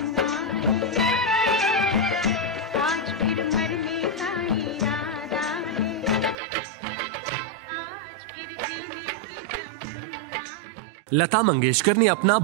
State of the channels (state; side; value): drops out; left; at 6.4 s